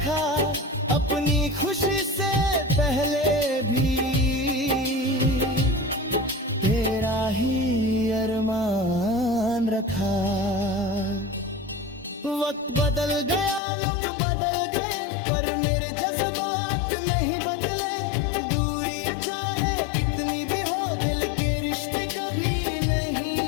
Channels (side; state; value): right; drops out; at 13.6 s